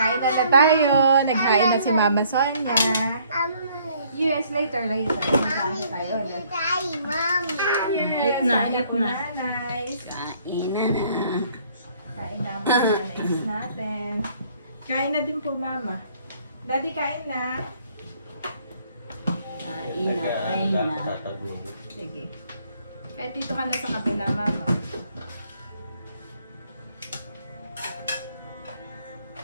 na tayo. Naghain na si Mama Sonia. Yes, later. Kain tayo. Mommy. Yes, Eat na, kain eat po, na. nanay. Kain na na. Kain na mga nanay natin. Kain na din po, Mama. Daddy, kain na. Kain na, kain na. Sige. Kahit dito ka na sa kabila, Mama.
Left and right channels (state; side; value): inverted; both; correlation -0.63